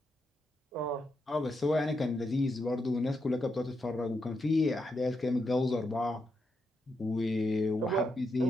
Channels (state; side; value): normal; both; correlation 0.83